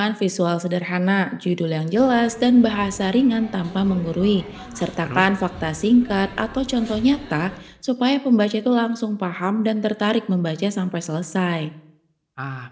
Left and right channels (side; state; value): both; identical; correlation 1.00